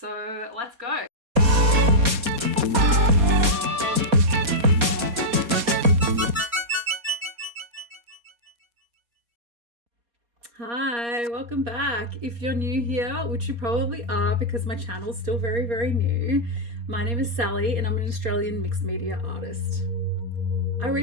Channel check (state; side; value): late; left; 4.2 ms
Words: let's go. Hi, welcome back. If you're new here, which you probably are because my channel's still very new, my name is Sally and I'm an Australian mixed media artist. I